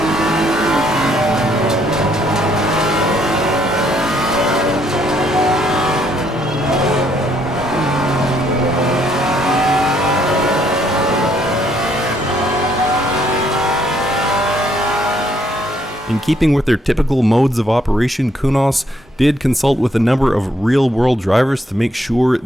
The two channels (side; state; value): both; normal; correlation 0.70